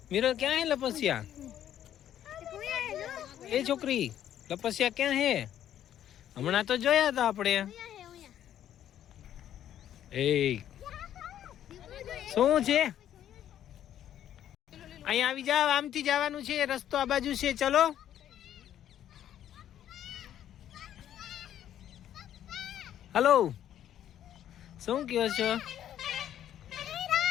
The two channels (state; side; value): quieter; right; 10.9 dB